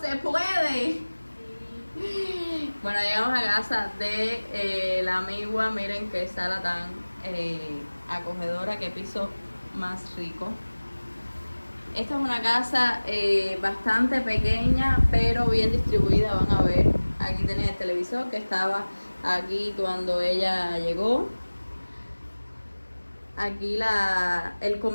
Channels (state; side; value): inverted; both; correlation -1.00